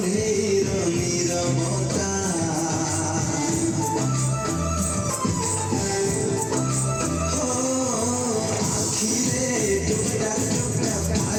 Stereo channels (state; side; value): identical; both; correlation 1.00